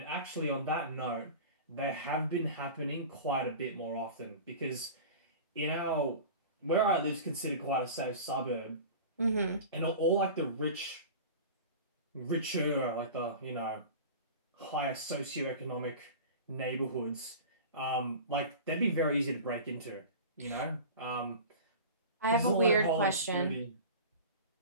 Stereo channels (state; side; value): inverted; both; correlation -0.35